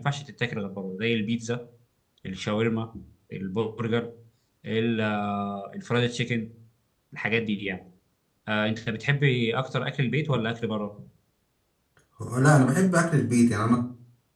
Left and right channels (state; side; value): identical; both; correlation 1.00